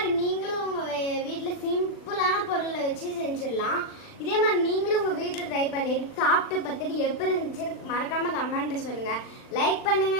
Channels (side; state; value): right; late; 40 ms